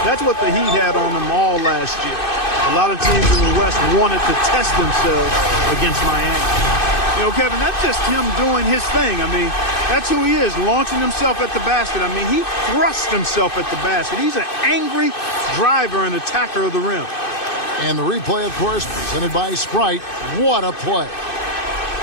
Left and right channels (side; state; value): right; late; 2.6 ms